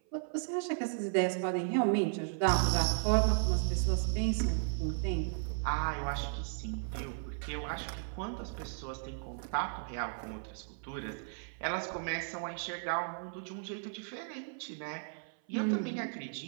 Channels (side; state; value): left; silent; 54 dB below the other